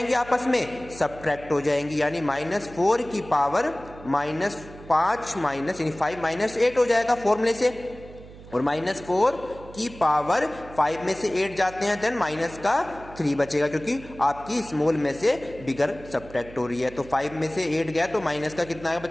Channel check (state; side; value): noise; right; hum, 18 dB below the sound